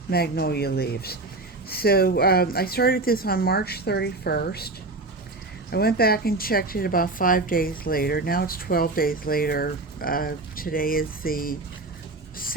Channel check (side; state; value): left; quieter; 3.1 dB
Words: magnolia leaves. So I started this on March 31st. I went back and checked it about 5 days later. Now it's 12 days later. Today is the